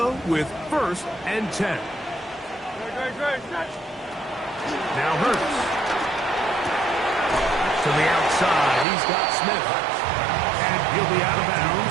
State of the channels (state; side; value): drops out; left; at 8.8 s